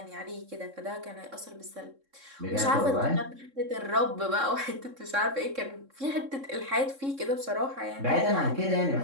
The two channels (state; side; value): late; left; 3.6 ms